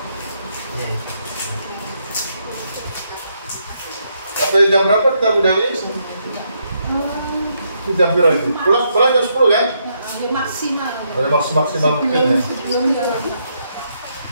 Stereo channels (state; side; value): inverted; both; correlation -0.77